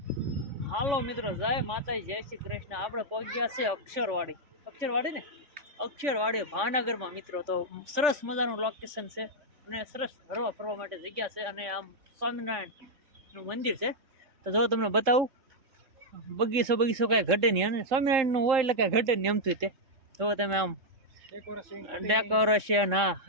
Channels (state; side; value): late; left; 3.6 ms